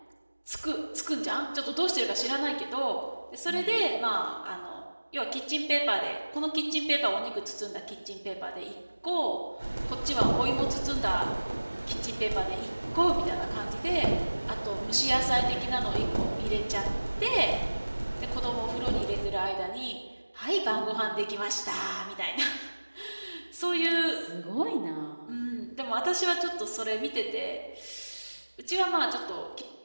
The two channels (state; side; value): inverted; both; correlation -1.00